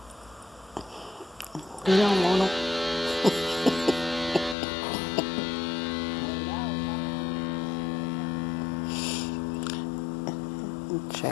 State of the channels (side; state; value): right; drops out; at 4.5 s